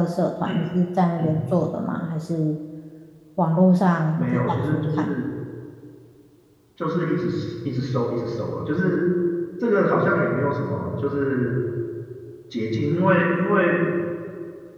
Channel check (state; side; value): identical; both; correlation 1.00